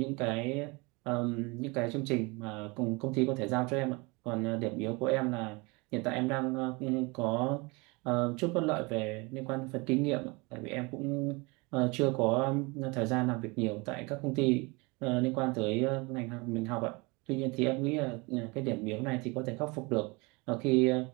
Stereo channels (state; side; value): quieter; left; 26.9 dB